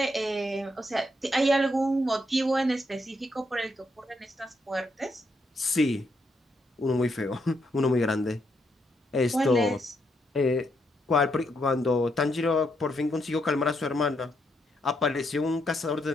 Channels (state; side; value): normal; both; correlation 0.77